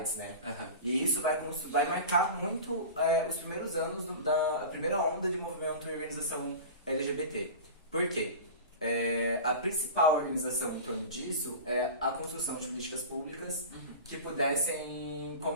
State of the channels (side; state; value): both; inverted; correlation -0.32